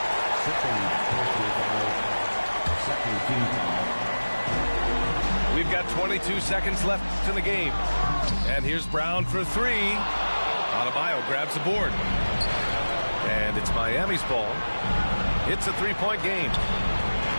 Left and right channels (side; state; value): both; inverted; correlation -1.00